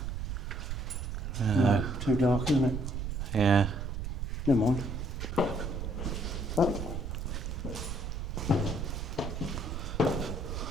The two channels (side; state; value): right; noise; rumble, 4 dB below the sound